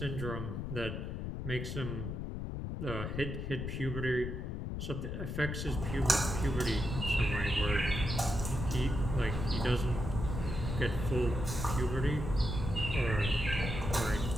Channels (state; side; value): noise; left; rumble, 4 dB below the sound